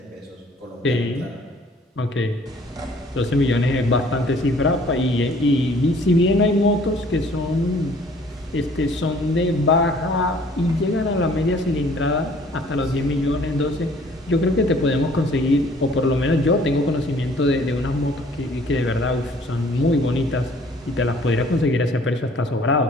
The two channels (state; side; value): normal; both; correlation 0.56